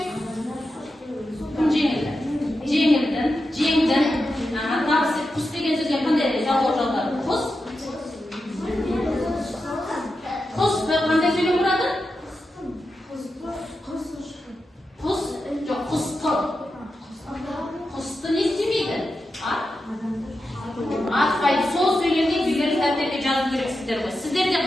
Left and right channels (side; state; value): both; normal; correlation 0.89